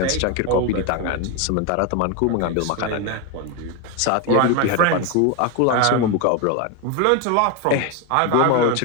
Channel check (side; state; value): both; different; correlation 0.02